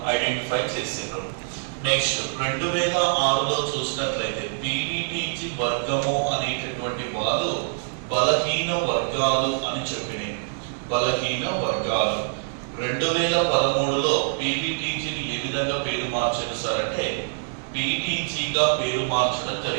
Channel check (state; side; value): silent; left; digital silence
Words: ఐడెంటిఫై చేశారు. నెక్స్ట్ 2006లో చూసినట్లయితే పీవీటీజీ వర్గము అనేటటువంటి వారు బలహీన వర్గాలు అని చెప్పినాయి. బలహీన వర్గాలు. 2013లో పీవీటీజీని ఏ విధంగా పేరు మార్చారు సార్ అంటే పీటీజీగా పేరు మార్చడం